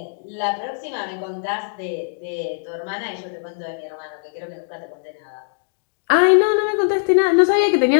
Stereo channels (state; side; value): silent; right; digital silence